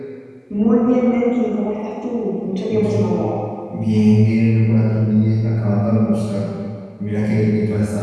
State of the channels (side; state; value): both; identical; correlation 1.00